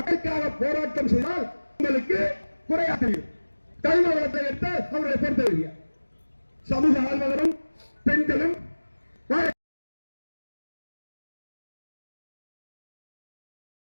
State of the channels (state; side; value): inverted; both; correlation -1.00